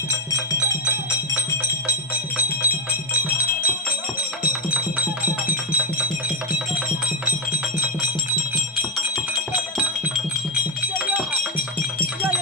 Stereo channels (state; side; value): normal; both; correlation 0.08